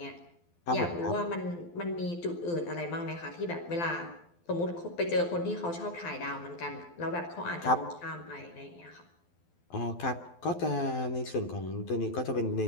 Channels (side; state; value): right; late; 12 ms